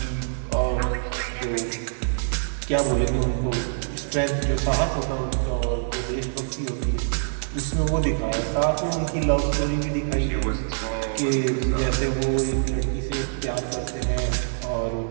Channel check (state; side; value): silent; left; digital silence